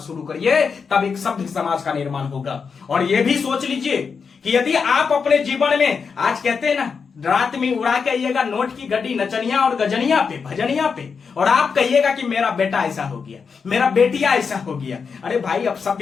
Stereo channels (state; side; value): quieter; right; 5.7 dB